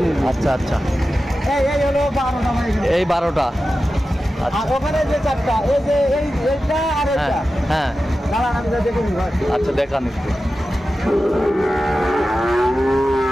আচ্ছা আচ্ছা, এই হলো 12টা ভাই। এই 12টা। আচ্ছা, আর ওখানে যে 4টা, এই যে এইটা আর হ্যাঁ এইটা। হ্যাঁ। দাঁড়ান, আমি দেখে নিই ভাই। আচ্ছা, দেখান একটু।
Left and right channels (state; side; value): normal; both; correlation 0.93